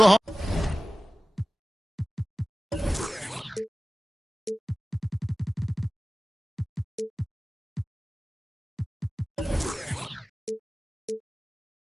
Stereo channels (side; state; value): both; normal; correlation 0.97